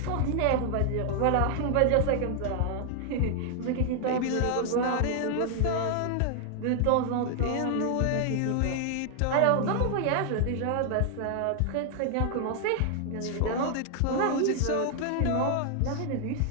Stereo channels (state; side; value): different; both; correlation 0.00